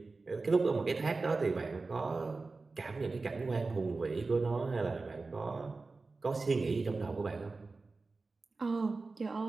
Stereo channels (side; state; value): left; quieter; 3.8 dB